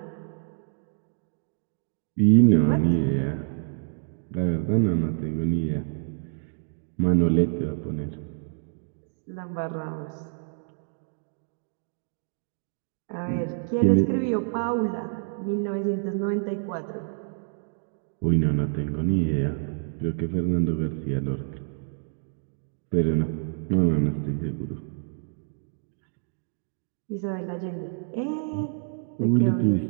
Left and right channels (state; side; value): silent; left; 55 dB below the other